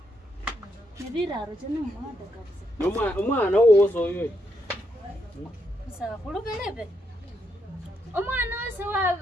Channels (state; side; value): normal; both; correlation 0.79